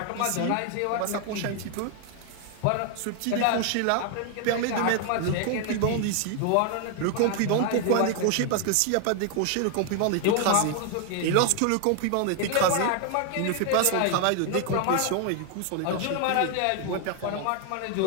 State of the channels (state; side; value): different; both; correlation 0.00